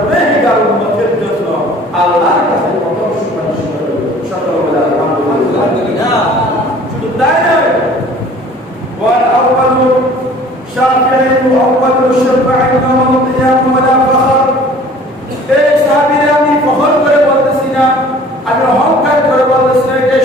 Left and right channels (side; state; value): both; normal; correlation 0.49